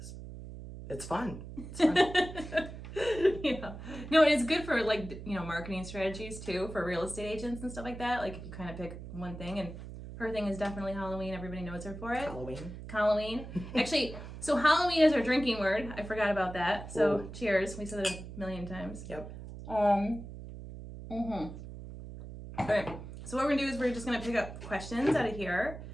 it's fun. It's fun. Yeah. No, it's good for marketing strategies too for real estate agents and stuff like that. Like if you kind of pick one thing, and her thing is definitely Halloween. Everybody knows her for it. Halloween. Actually, so Halloween is our drinking word. I forgot about that. So Ooh. Cheers. We said it a million times. Yep. Okay. So what we're gonna do is we're just gonna pick up questions out of here,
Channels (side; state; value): right; noise; hum, 11 dB below the sound